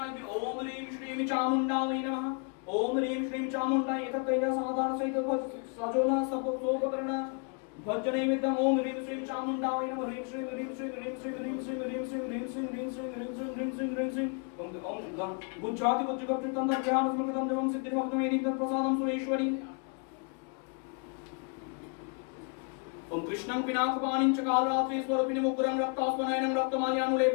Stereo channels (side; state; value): right; quieter; 38.3 dB